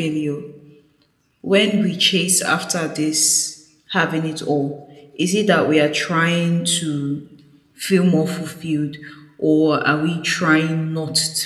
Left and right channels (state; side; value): identical; both; correlation 1.00